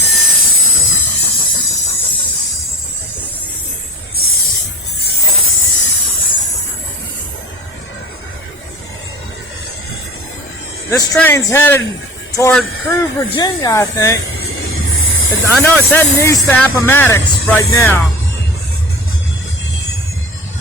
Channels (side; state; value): both; normal; correlation 0.37